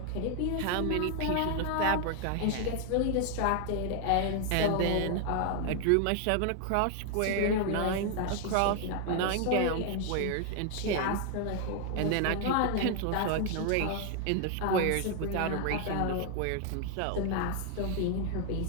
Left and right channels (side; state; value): both; different; correlation 0.00